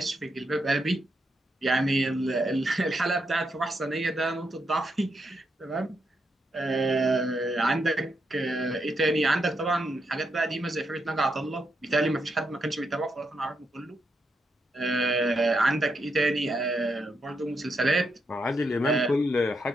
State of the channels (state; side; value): normal; both; correlation 0.81